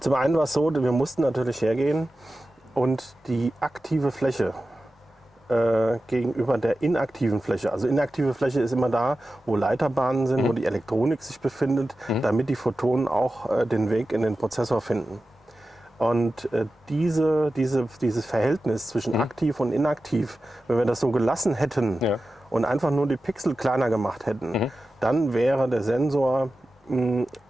einen war es so, wir mussten natürlich hergehen und die aktive Fläche gegenüber der inaktiven Fläche. Also inaktive Fläche ist immer da, wo Leiterbahnen sind, wo die Elektronik sich befindet, damit die Photonen auch den Weg in den Prozessor finden. Und dieses Verhältnis zwischen aktiv und inaktiv, wenn wir das so gelassen hätten und einfach nur die Pixel kleiner gemacht hätten, dann wäre der Sensor in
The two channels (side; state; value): both; normal; correlation 0.94